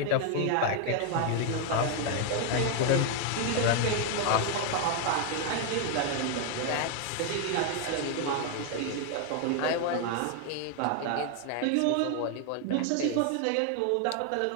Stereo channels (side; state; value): both; different; correlation 0.00